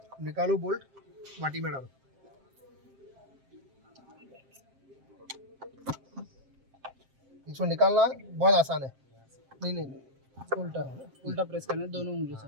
निकालो बोल्ट, वाटी में डालो। इसको निकालना बहुत आसान है। नहीं उल्टा प्रेस करना है दोनों उंगली से।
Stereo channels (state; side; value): late; left; 7.6 ms